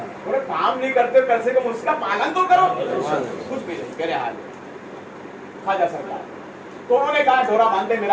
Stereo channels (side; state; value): both; identical; correlation 1.00